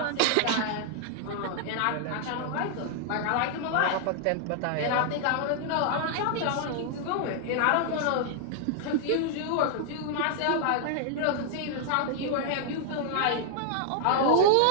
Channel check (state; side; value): different; both; correlation -0.01